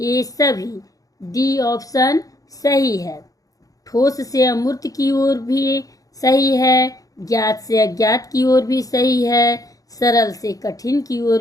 सभी। डी ऑप्शन सही है। ठोस से अमूर्त की ओर भी सही है, ज्ञात से अज्ञात की ओर भी सही है, सरल से कठिन की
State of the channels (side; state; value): right; late; 0.17 ms